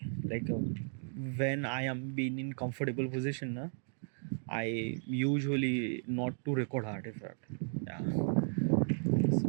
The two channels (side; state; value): left; silent; digital silence